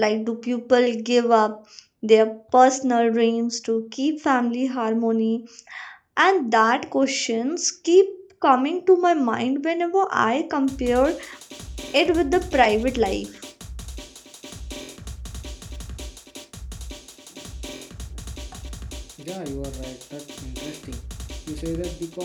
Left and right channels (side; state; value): both; identical; correlation 1.00